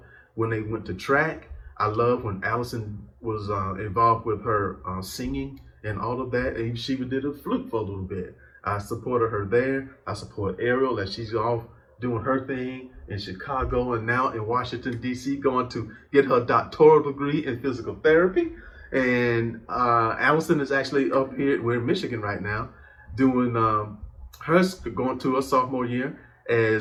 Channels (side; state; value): both; identical; correlation 1.00